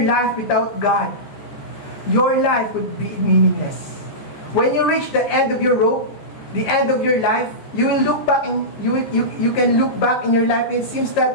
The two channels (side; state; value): right; late; 14 ms